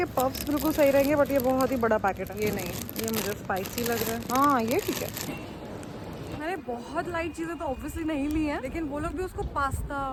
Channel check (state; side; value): identical; both; correlation 1.00